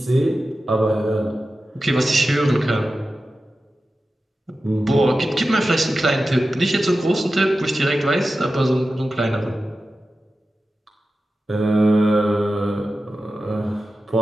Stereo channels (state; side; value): normal; both; correlation 0.93